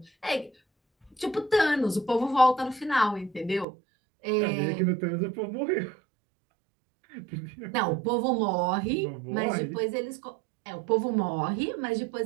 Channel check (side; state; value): left; drops out; at 3.7 s